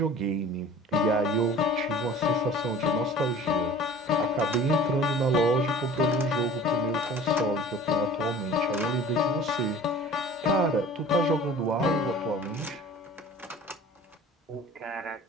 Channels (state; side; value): normal; both; correlation 0.44